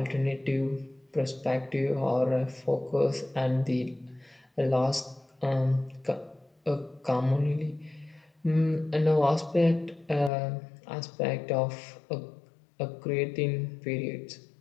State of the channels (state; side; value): drops out; right; at 10.3 s